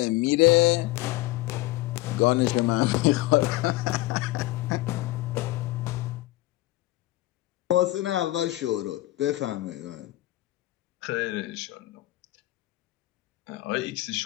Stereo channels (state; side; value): quieter; right; 17.9 dB